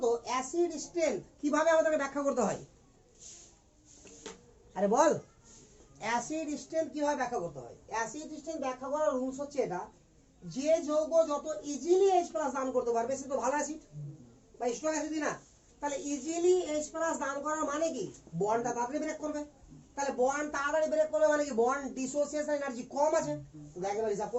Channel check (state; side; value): identical; both; correlation 1.00